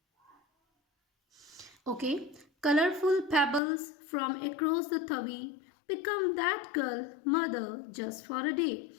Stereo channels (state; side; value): drops out; right; at 3.6 s